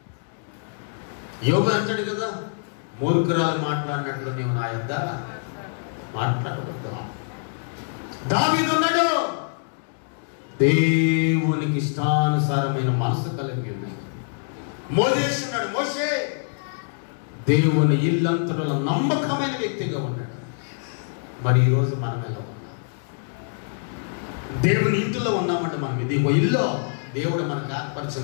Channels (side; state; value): right; silent; digital silence